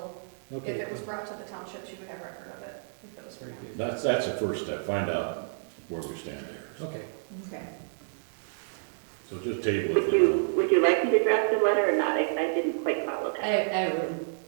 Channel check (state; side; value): silent; left; 58 dB below the other